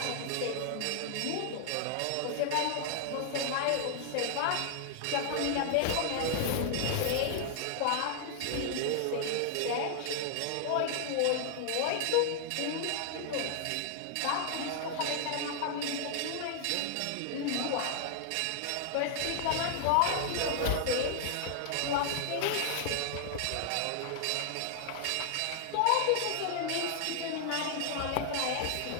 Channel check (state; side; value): different; both; correlation 0.00